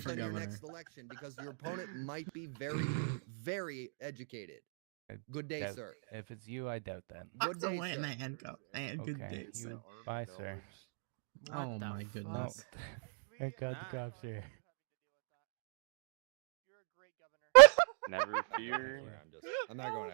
for on your governor. next election because your opponent might be very, very educated. I Good day, doubt- sir. If it's you, I doubt that. Good So day, why in sir. the handcuff? And good Okay. day, sir. You, bye, sir. Oh my No. goodness. Thank God the cops here. You're a great governor. Never fear. I'm not going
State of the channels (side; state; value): left; silent; digital silence